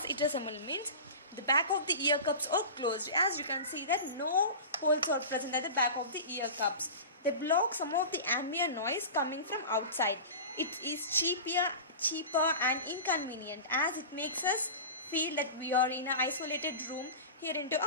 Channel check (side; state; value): both; inverted; correlation -0.31